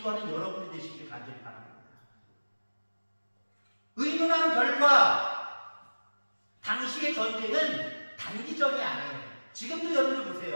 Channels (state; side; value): inverted; both; correlation -1.00